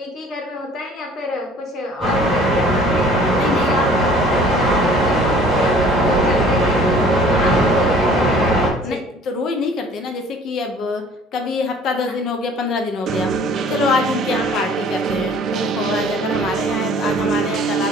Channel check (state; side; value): normal; both; correlation 0.51